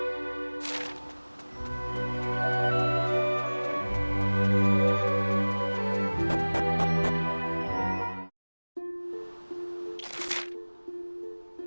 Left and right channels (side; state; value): both; inverted; correlation -1.00